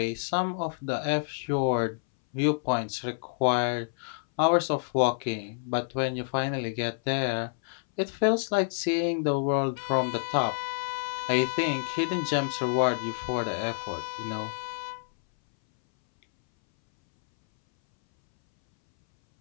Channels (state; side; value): silent; right; 59 dB below the other